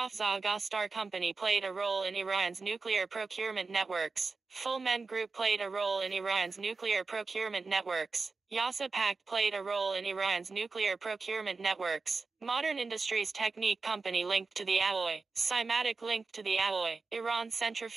Gastar Company played a role in Iran's nuclear procurement networks. Full Men Group played a role in Iran's nuclear procurement networks. Yasa Pact played a role in Iran's nuclear procurement networks. Modern Industries Technique Company linked to the Alloy. Cymatic linked to the Alloy. Iran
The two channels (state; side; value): quieter; left; 4.1 dB